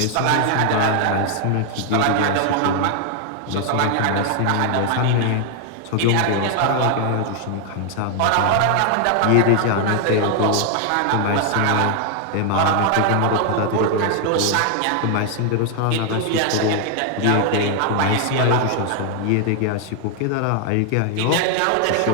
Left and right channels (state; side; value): different; both; correlation 0.00